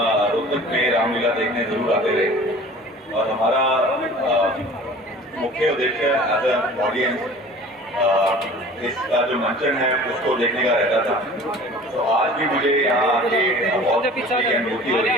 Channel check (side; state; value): both; normal; correlation 0.44